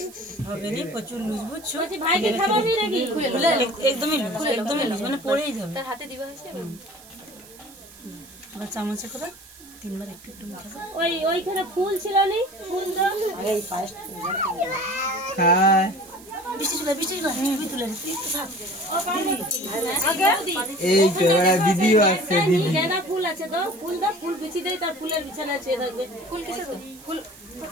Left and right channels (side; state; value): right; noise; hiss, 21 dB below the sound